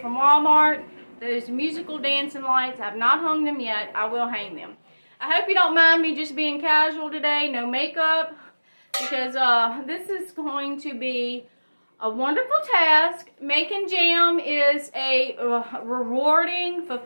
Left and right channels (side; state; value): both; inverted; correlation -1.00